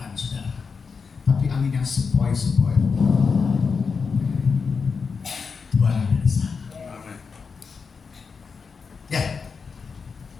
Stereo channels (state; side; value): quieter; right; 5.3 dB